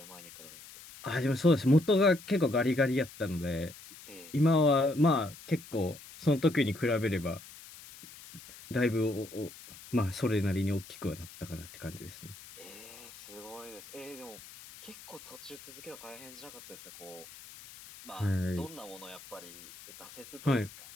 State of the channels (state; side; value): noise; left; hiss, 17 dB below the sound